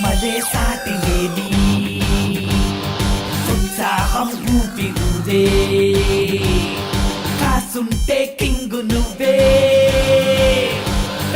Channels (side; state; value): both; identical; correlation 1.00